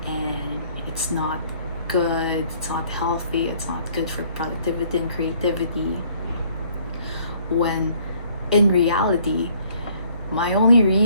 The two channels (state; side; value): inverted; both; correlation -0.61